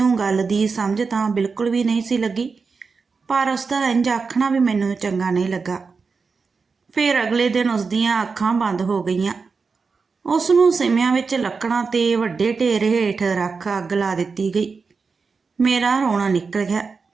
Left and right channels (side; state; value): left; quieter; 4.8 dB